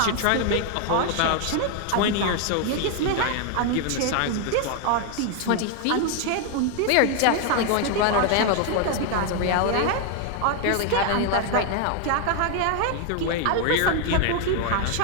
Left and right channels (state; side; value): different; both; correlation 0.01